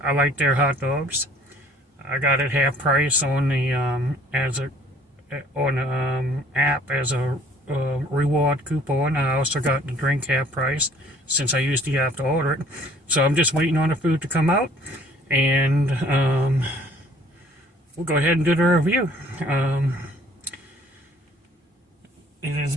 like their hot dogs. I got it half price on the app as a reward coupon. I also got the drink half price since I usually have to order it. So I'm just waiting on the food to come out, and we'll go ahead and do the review. It is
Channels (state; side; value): normal; both; correlation 0.56